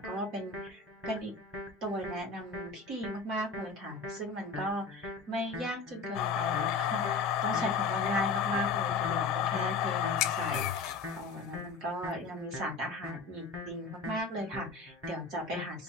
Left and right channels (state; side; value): quieter; right; 4.3 dB